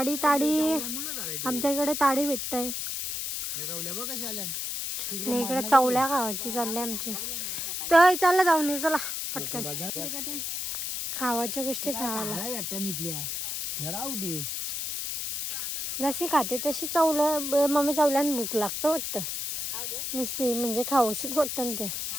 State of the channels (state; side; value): noise; left; hiss, 3 dB below the sound